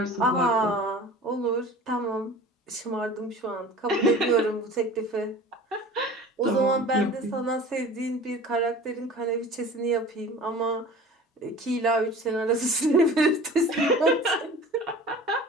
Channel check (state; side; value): normal; both; correlation 0.41